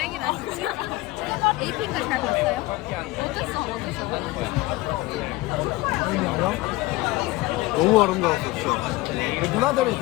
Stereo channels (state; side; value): quieter; right; 19.8 dB